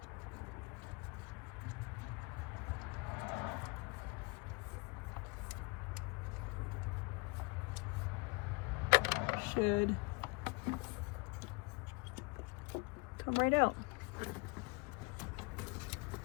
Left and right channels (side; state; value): right; quieter; 28.3 dB